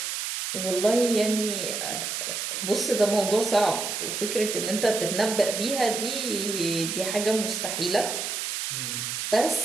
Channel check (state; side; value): noise; right; hiss, 3 dB below the sound